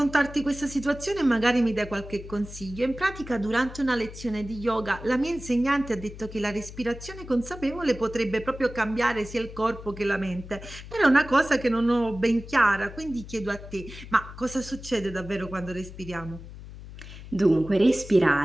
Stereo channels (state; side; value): noise; left; hum, 14 dB below the sound